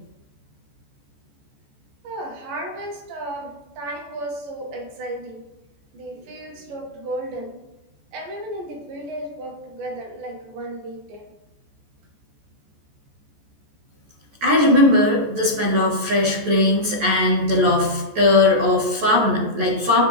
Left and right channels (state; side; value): late; left; 14 ms